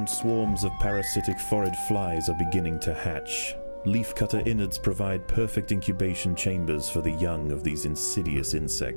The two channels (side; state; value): both; inverted; correlation -1.00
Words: swarms of parasitic phorid flies are beginning to hatch. Leafcutter innards provide perfect incubation chambers for the young of these insidious